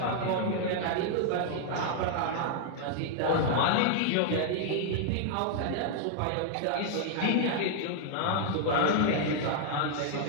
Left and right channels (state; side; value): different; both; correlation 0.00